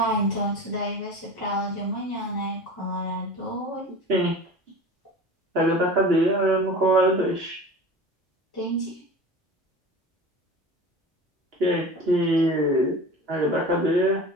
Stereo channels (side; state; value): both; normal; correlation 0.36